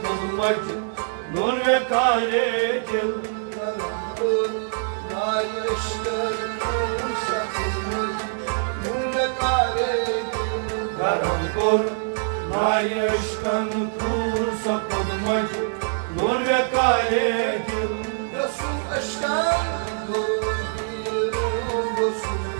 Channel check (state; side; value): silent; left; digital silence